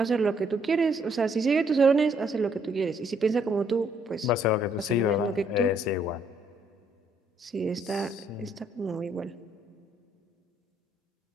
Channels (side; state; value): both; normal; correlation 0.69